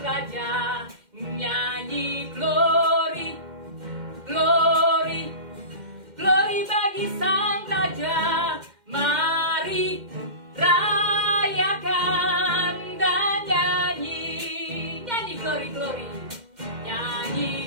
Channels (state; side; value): late; left; 2.1 ms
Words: Raja. Nyanyi glory, glory, glory bagi Sang Raja. Mari rayakan dan nyanyi. Nyanyi glory, glory.